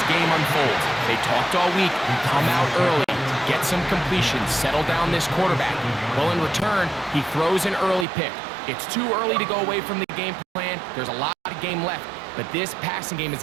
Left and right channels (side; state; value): left; drops out; at 8.1 s